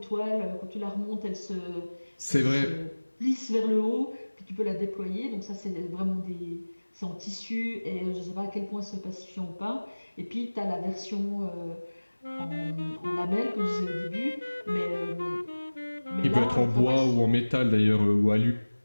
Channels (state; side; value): inverted; both; correlation -1.00